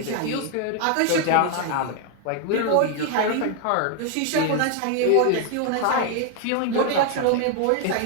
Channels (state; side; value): different; both; correlation 0.00